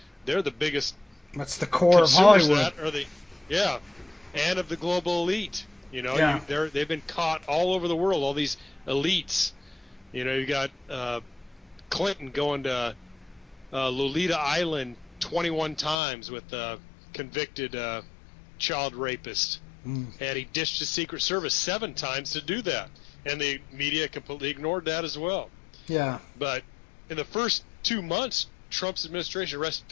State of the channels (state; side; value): drops out; right; at 16.0 s